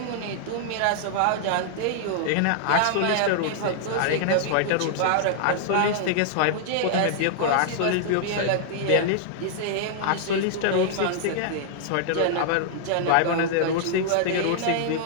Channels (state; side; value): different; both; correlation -0.01